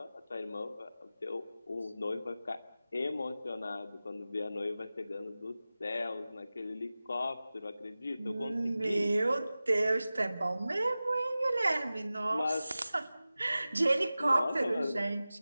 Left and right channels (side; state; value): both; inverted; correlation -0.96